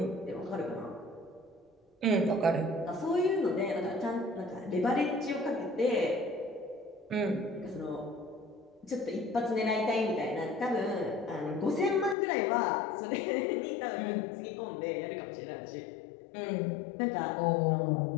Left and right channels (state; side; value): drops out; right; at 12.2 s